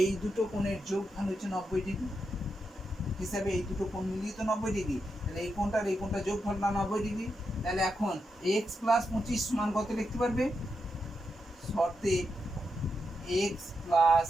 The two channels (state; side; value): normal; both; correlation 0.85